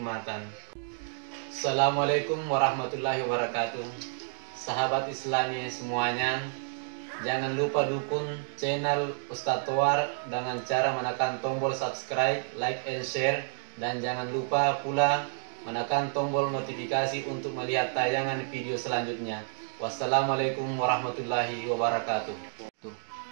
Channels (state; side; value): silent; left; 58 dB below the other